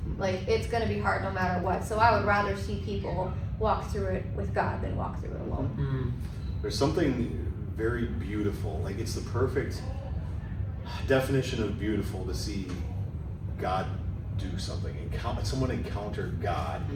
Like it's gonna be hard no matter what. So I would rather see people walk through it with God than walk through it alone. There's something very beautiful, like it's the perfect definition of beautiful to see God do something, someone encounter God,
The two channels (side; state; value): both; identical; correlation 1.00